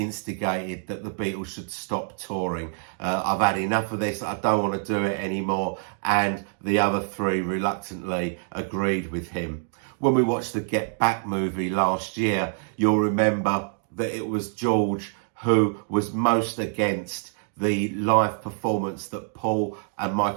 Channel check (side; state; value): left; silent; 61 dB below the other